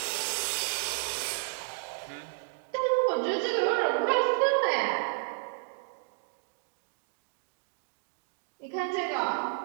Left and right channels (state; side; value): silent; left; digital silence